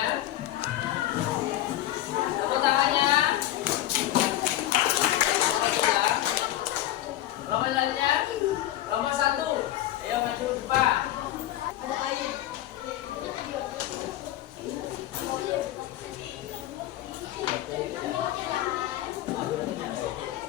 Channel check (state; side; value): quieter; right; 14.0 dB